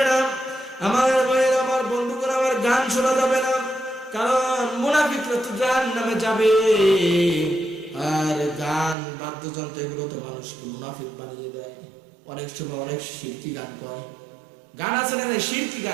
না। আমার ভাইয়ের, আমার বন্ধুগণ, আমার গান শোনা যাবে না, কারণ মুনাফিকরা তো জাহান্নামে যাবে। আর গান, বাদ্যযন্ত্র এগুলো তো মানুষকে মুনাফিক বানিয়ে দেয়। অনেক সময় অনেক শিরকি গান কয়। গান আছে না শিরকি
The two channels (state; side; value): drops out; left; at 9.0 s